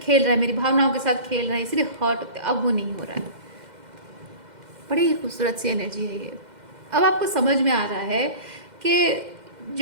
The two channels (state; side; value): late; left; 2.1 ms